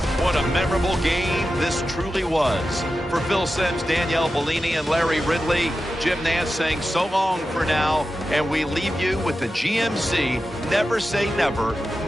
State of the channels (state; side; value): normal; both; correlation 0.92